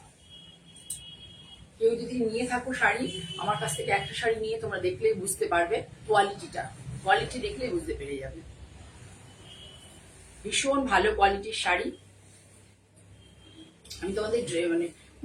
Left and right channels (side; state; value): both; identical; correlation 1.00